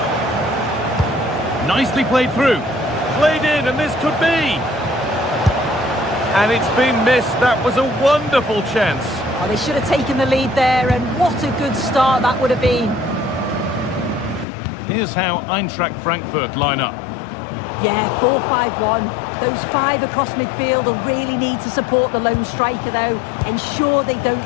Nicely played through. Played in, and this could be. And it's been missed. That was a wonderful chance. Oh, they should have taken the lead there, and what a good start that would have been. Here's how Eintracht Frankfurt line up. Yeah, 4-5-1. Those 5 across midfield will really need to support the lone striker, though. Ensure they don't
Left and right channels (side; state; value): right; drops out; at 14.5 s